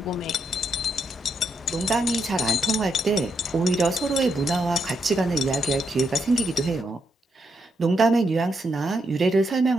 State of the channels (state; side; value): normal; both; correlation 0.80